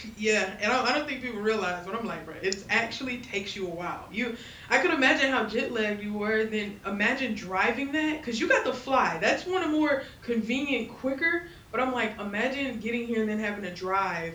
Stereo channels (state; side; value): identical; both; correlation 1.00